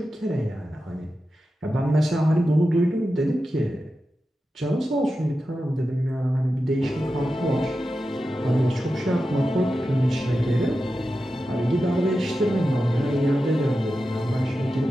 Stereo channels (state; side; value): normal; both; correlation 0.91